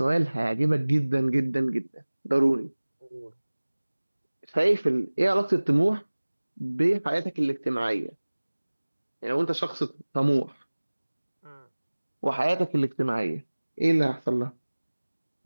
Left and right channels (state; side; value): inverted; both; correlation -1.00